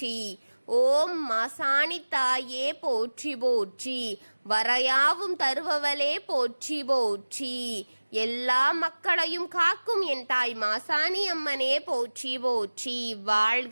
ஓம் மாசாணி தாயே போற்றி போற்றி. வரையாவும் தருபவளே போற்றி போற்றி. எல்லா மக்களையும் காக்கும் என் தாய் மாசாணி அம்மனே போற்றி போற்றி.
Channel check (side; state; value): both; inverted; correlation -1.00